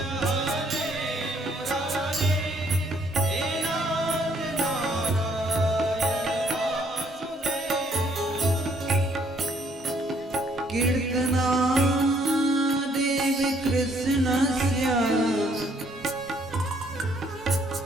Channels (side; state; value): both; normal; correlation 0.66